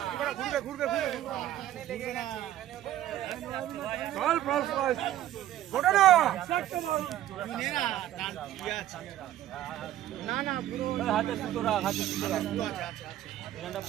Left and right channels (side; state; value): left; quieter; 13.0 dB